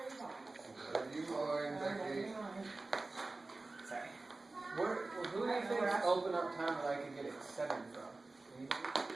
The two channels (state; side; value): quieter; left; 3.3 dB